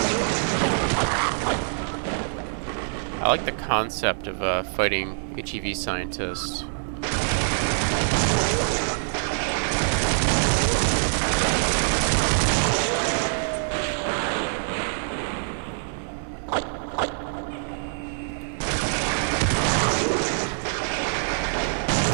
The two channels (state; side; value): silent; left; digital silence